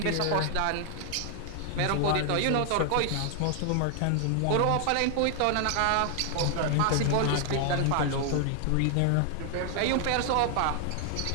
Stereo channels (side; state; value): both; different; correlation 0.00